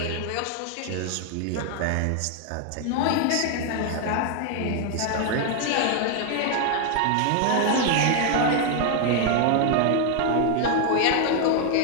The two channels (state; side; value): different; both; correlation 0.01